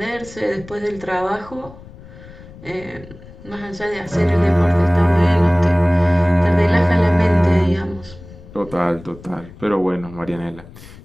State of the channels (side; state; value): left; noise; rumble, 19 dB below the sound